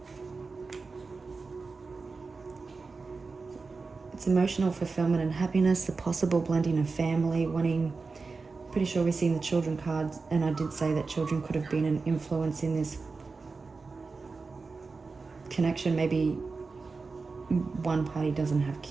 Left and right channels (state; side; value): quieter; left; 4.2 dB